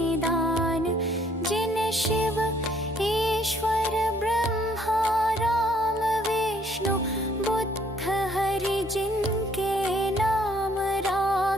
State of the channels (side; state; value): both; normal; correlation 0.64